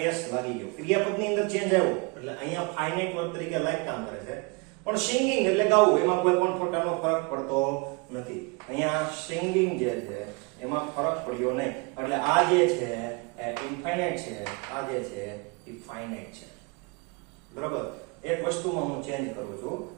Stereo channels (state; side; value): quieter; left; 29.5 dB